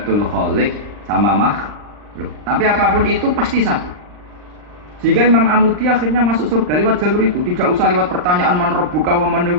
khaliq sama makhluk. Tapi apapun itu pasti satu. Sehingga Imam Amudi akhirnya masuk surga lewat jalur itu, tidak usah lewat pertanyaan man rabbuka wa man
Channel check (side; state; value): left; late; 39 ms